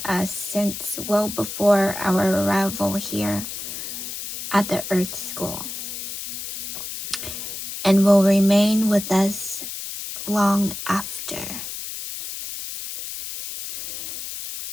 us since well before our arrival here at the Earth School, and will remain with us long after.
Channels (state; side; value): noise; left; hiss, 7 dB below the sound